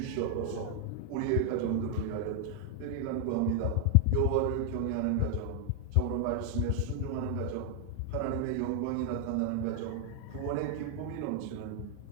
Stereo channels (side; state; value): both; different; correlation 0.00